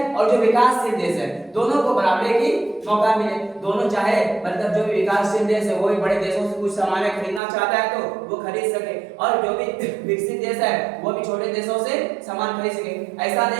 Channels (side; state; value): left; drops out; at 7.4 s